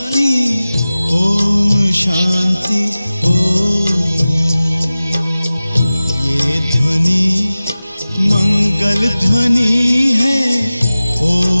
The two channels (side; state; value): both; inverted; correlation -0.97